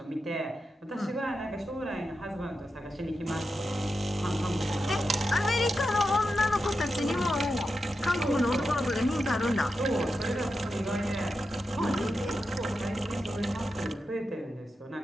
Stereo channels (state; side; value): normal; both; correlation 0.89